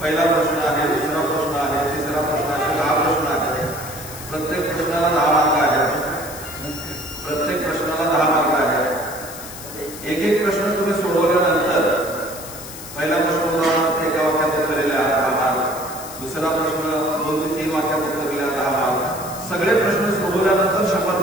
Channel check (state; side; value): noise; left; hiss, 13 dB below the sound